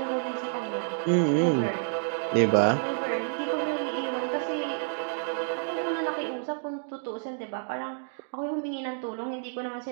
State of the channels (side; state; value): left; silent; digital silence